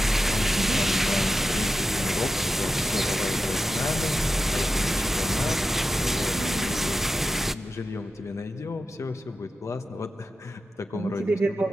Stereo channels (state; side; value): normal; both; correlation 0.90